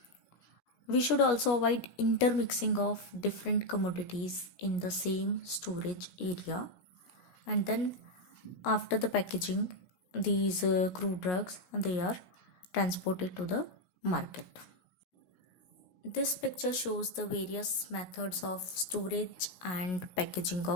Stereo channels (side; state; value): right; late; 17 ms